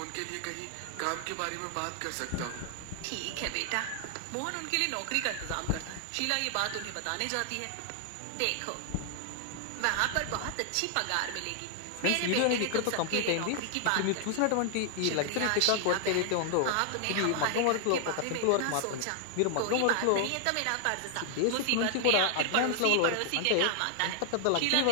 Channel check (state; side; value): different; both; correlation 0.00